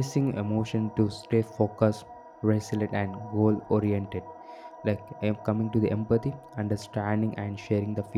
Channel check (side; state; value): both; identical; correlation 1.00